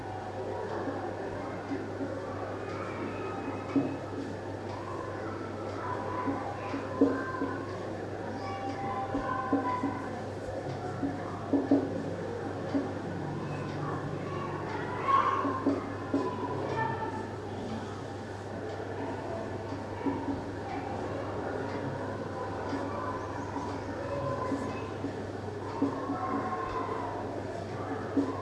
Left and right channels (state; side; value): identical; both; correlation 1.00